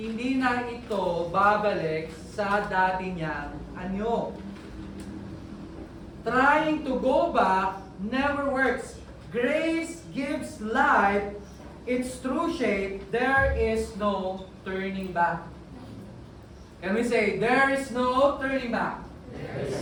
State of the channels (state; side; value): identical; both; correlation 1.00